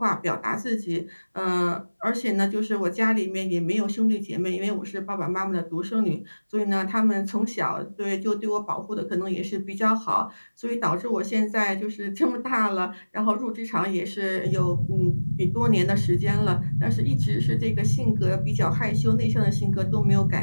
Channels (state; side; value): inverted; both; correlation -1.00